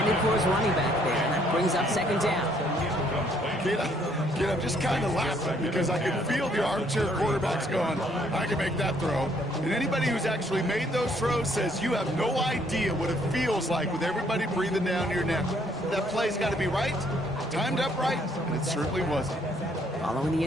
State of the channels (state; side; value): normal; both; correlation 0.67